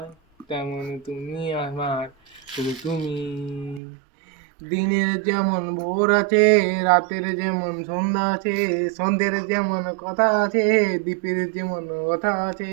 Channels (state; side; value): drops out; left; at 3.8 s